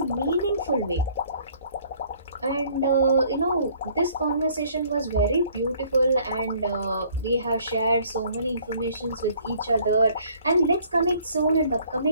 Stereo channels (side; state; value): both; inverted; correlation -0.59